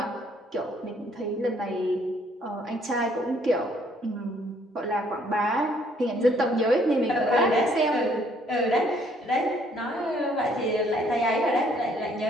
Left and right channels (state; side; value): normal; both; correlation 0.64